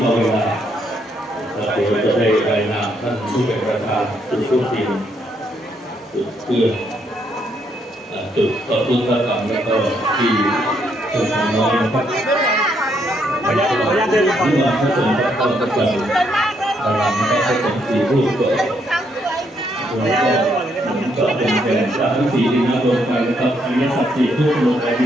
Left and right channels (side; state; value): both; normal; correlation 0.74